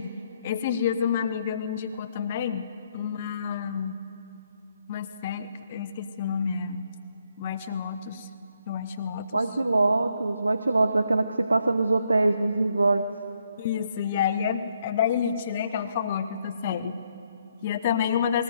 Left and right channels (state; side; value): inverted; both; correlation -0.74